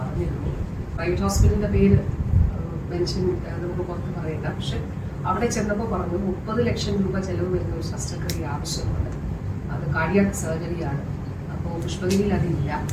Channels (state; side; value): identical; both; correlation 1.00